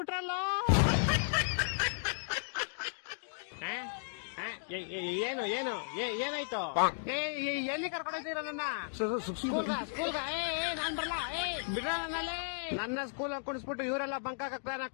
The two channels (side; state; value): right; silent; digital silence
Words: ಏನು ಏನಾಯ್ತು? ಎಲ್ಲಿ ಕರ್ಕೊಂಡೋಗ್ತೀರ ನನ್ನ ಸ್ಕೂಲ್ಗ? ನಾನ್ ಬರ್ಲಾ. ಬಿಡ್ರ ನನ್ನಲ್ಲಿ. ನನ್ನ ಸ್ಕೂಲ್ ಕುಣಿಸ್ಬಿಟ್ಟು ಇವರೆಲ್ಲ ಬಂಕಾಕ ಪ್ಲಾನ್